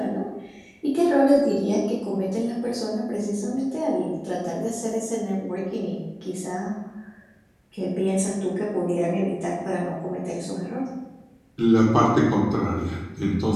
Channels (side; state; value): both; identical; correlation 1.00